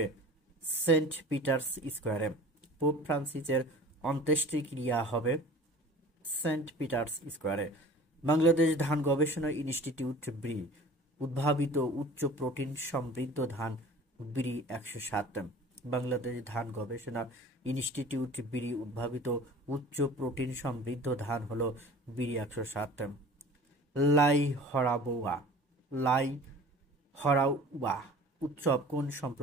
সেন্ট পিটার্স স্কোয়ারে। পোপ ফ্রান্সিসের অন্ত্যেষ্টিক্রিয়া হবে সেন্ট পিটার্স স্কোয়ারে। বাংলাদেশ ধান গবেষণা ইনস্টিটিউট ব্রি উদ্ভাবিত উচ্চ প্রোটিন সমৃদ্ধ ধান ব্রি 107। বাংলাদেশ ধান গবেষণা ইনস্টিটিউট ব্রি উদ্ভাবিত উচ্চ প্রোটিন সমৃদ্ধ ধান হলো ব্রি 107। লাই হরাউবা উৎসব কোন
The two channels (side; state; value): both; normal; correlation 0.43